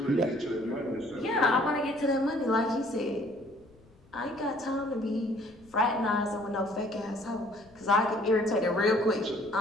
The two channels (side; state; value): left; noise; rumble, 28 dB below the sound